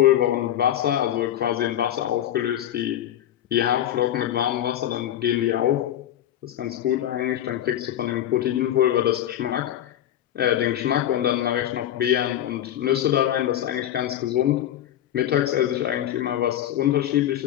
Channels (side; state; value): right; quieter; 11.6 dB